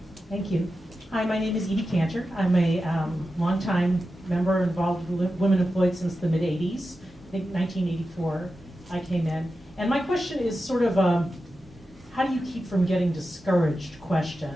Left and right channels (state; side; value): normal; both; correlation 0.91